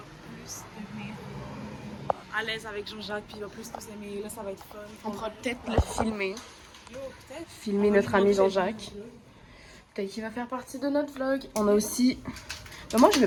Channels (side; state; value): both; identical; correlation 1.00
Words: plus devenir à l'aise avec Jean-Jacques, puis il va plus nous aimer. Là, ça va être fun. On pourra peut-être le filmer. Yo, peut-être. Filmer notre ami Jean-Jacques. Peut-être qu'il va faire partie de notre vlog. On a aussi... Mais moi, je mets